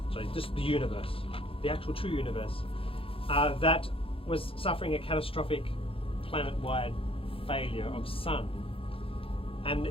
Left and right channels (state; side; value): late; right; 0.27 ms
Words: Sorry, just the universe, the actual true universe, that was suffering a catastrophic planet-wide failure of sun. And